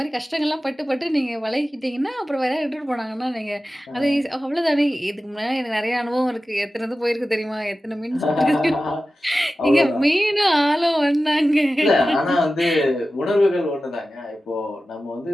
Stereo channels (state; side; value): normal; both; correlation 0.94